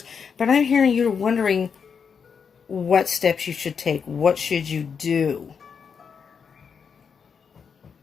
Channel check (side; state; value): right; quieter; 6.4 dB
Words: but I'm hearing you're wondering what steps you should take. What should you do?